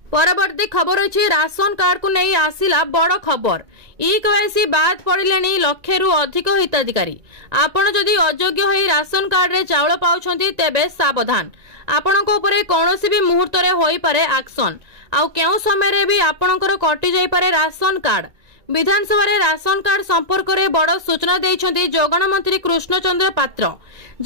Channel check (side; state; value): left; late; 1.9 ms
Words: परवर्ती खबर अछि राशन कार्ड को नहीं आसिला बड़ खबर। ई-केवाईसी बाद पड़िलेनी लक्षेरु अधिक हिताधिकारी। आपण जदि अयोग्य होई राशन कार्ड रे चाउल पाउछंती तेबे सावधान। आपणको उपरे कोनोसी भी मुहूर्त रे होई पारे एक्शन। आउ केउ समय रे भी आपणकर कटि जाई पारे राशन कार्ड। विधानसभा रे राशन कार्ड संपर्क रे बड़ सूचना दैछंती जोगण मंत्री कृष्णचंद्र पात्र।